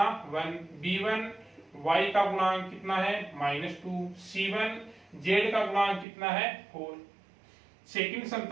1, b1 y का गुणांक कितना है -2, c1 z का गुणांक कितना है 4। सेकंड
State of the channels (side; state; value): left; drops out; at 6.1 s